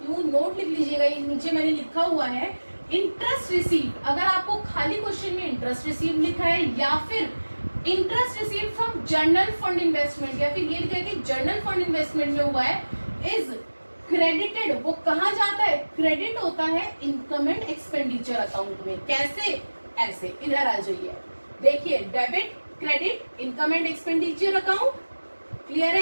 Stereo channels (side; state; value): both; inverted; correlation -1.00